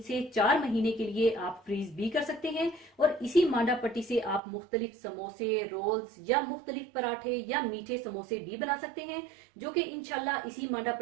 से 4 महीने के लिए आप फ्रीज भी कर सकते हैं। और इसी मांडा पट्टी से आप मुख्तलिफ समोसे, रोल्स या मुख्तलिफ पराठे या मीठे समोसे भी बना सकते हैं, जो कि इंशाल्लाह इसी मांडा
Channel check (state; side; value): drops out; left; at 4.4 s